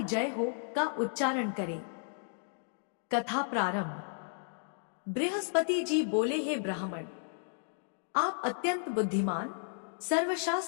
जय हो का उच्चारण करें। कथा प्रारंभ। बृहस्पति जी बोले, हे ब्राह्मण, आप अत्यंत बुद्धिमान,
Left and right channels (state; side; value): silent; right; digital silence